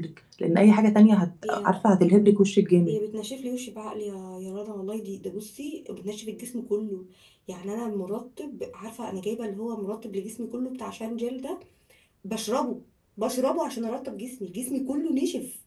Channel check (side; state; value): both; identical; correlation 1.00